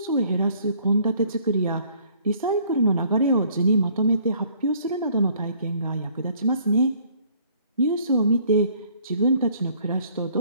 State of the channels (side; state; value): both; inverted; correlation -0.60